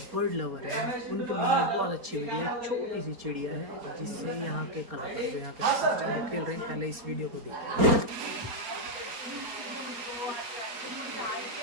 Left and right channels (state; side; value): late; left; 4.3 ms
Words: बर्ड लवर है उनके मन में बहुत अच्छी वीडियो है। छोटी सी चिड़िया है जिससे यहाँ के कलाकार जो यहाँ के खेल रहे हैं। पहले इस वीडियो को देखिए।